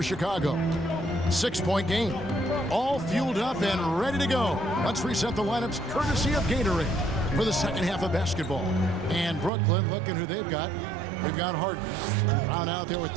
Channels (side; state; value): left; drops out; at 9.5 s